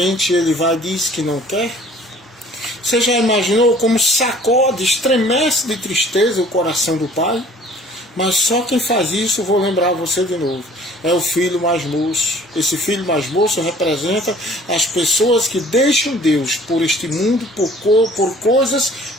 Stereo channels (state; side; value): normal; both; correlation 0.52